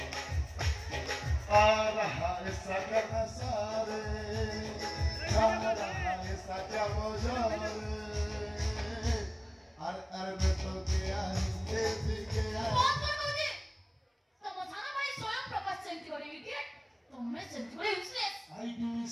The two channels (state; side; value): identical; both; correlation 1.00